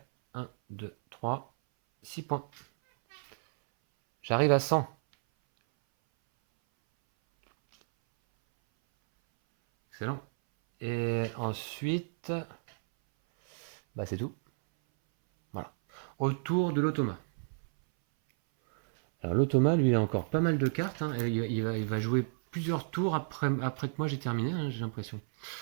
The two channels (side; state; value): left; silent; 57 dB below the other